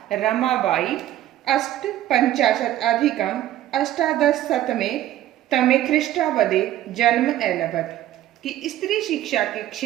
रमाबाई 850 तमे ख्रीष्टाब्दे जन्म एलभत। कि स्त्री शिक्षा के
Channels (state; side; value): quieter; left; 13.3 dB